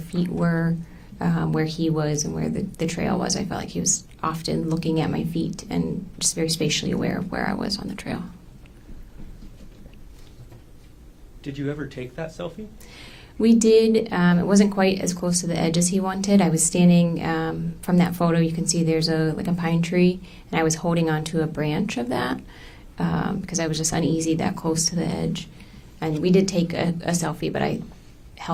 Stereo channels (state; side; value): identical; both; correlation 1.00